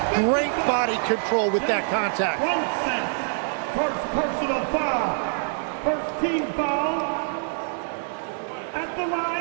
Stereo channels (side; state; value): left; silent; 62 dB below the other